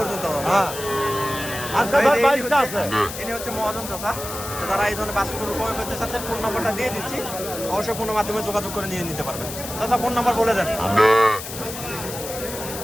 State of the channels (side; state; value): left; noise; hiss, 9 dB below the sound